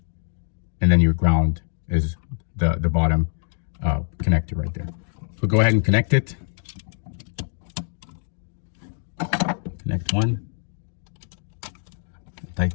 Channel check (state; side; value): silent; right; 62 dB below the other